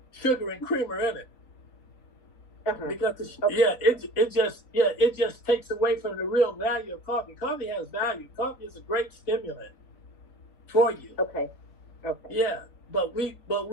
sugar and creamer in it. Because it just takes away from the real value of coffee. Coffee has value. Coffee is a great stimulant for you. Okay. Yeah, but we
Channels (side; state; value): right; late; 4.0 ms